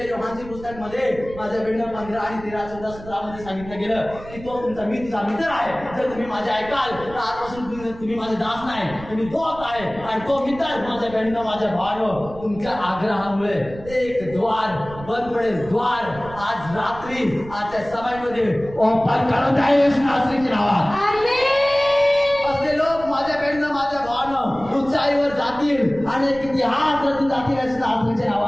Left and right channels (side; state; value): right; noise; rumble, 16 dB below the sound